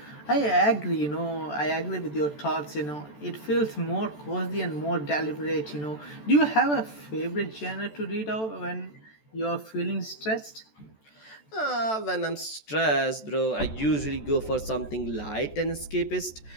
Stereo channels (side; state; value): right; late; 14 ms